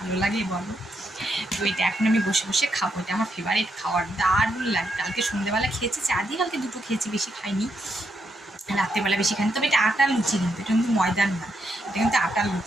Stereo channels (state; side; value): normal; both; correlation 0.80